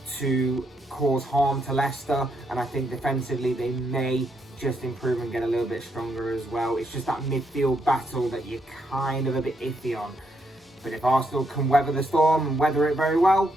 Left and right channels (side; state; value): both; normal; correlation 0.77